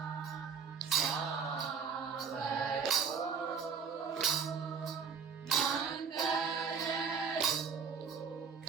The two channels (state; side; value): quieter; left; 6.2 dB